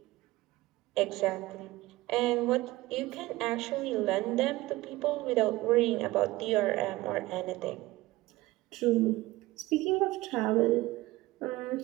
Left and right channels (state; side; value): quieter; left; 18.8 dB